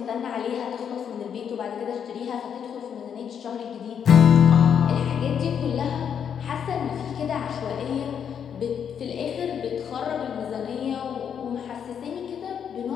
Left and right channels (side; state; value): right; quieter; 8.0 dB